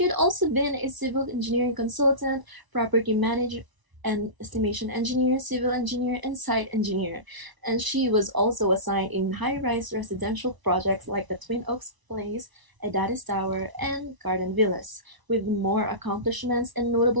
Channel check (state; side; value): late; left; 1.0 ms